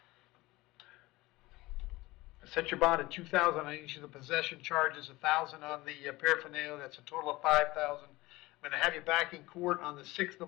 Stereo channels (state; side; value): quieter; right; 20.1 dB